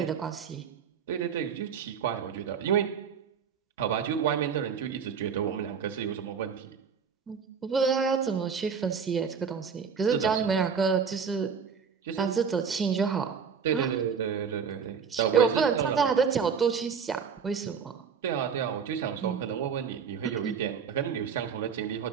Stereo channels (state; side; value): quieter; left; 6.6 dB